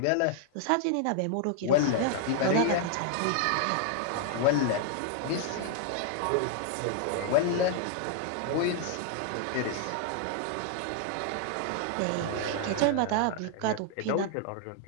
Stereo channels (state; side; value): different; both; correlation 0.00